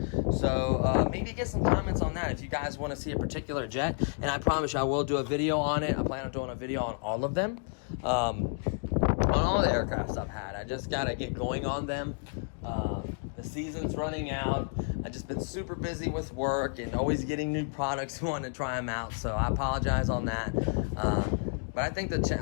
So maybe get some comments on that if you guys want to see a particular jet. And I promise you I will do a video on it. I plan on doing a video on all of them. On all the aircrafts I've had. I just gotta get going on them. The season's running out. I've just been super busy with work and always getting new products, wanting to try them out, so I apologize on that. But I think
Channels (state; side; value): silent; right; 57 dB below the other